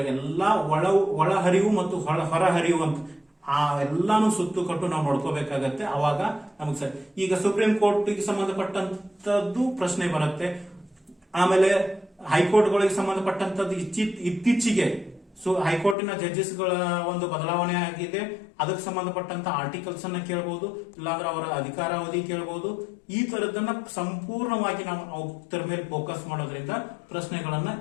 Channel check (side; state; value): right; drops out; at 16.0 s